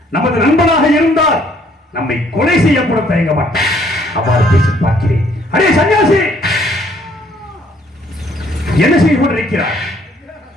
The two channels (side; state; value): both; normal; correlation 0.64